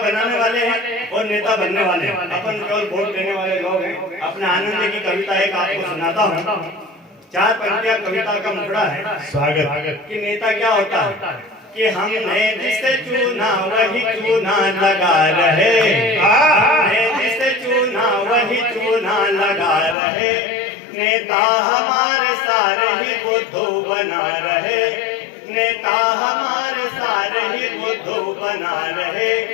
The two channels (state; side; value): drops out; right; at 20.0 s